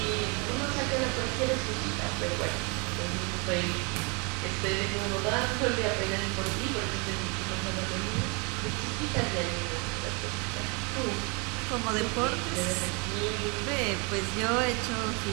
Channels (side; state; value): left; quieter; 32.2 dB